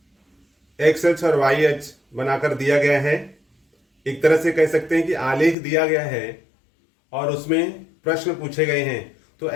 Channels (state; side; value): drops out; right; at 5.6 s